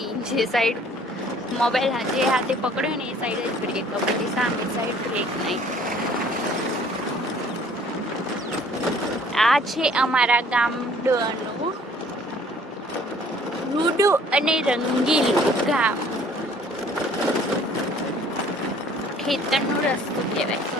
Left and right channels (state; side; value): normal; both; correlation 0.56